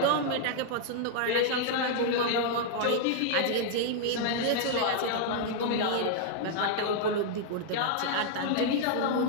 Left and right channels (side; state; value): both; different; correlation 0.00